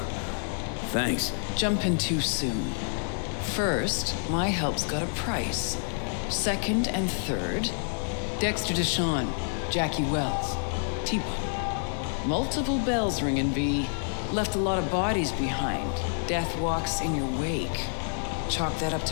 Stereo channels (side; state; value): right; silent; digital silence